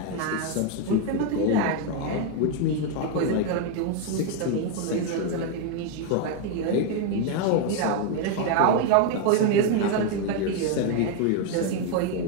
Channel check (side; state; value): both; different; correlation 0.01